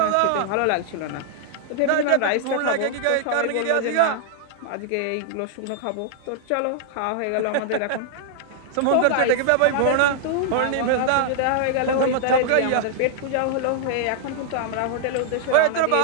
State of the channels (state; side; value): different; both; correlation -0.01